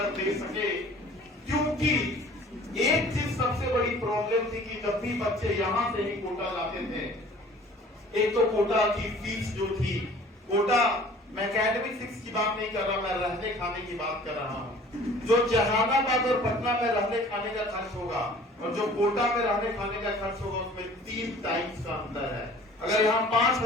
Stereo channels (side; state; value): both; normal; correlation 0.49